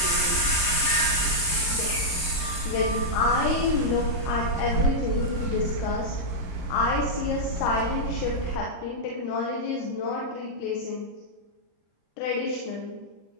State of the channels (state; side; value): late; right; 35 ms